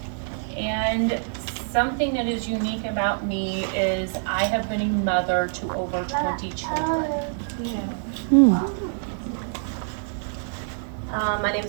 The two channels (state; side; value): silent; left; 61 dB below the other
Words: and something that is unique about me is I have been a mother to over 20 children. Yeah. My name